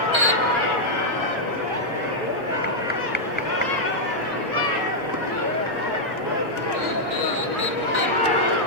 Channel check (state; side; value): normal; both; correlation -0.05